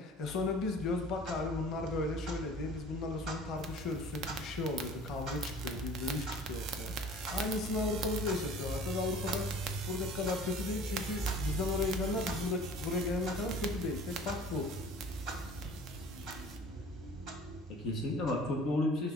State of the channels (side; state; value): both; normal; correlation 0.47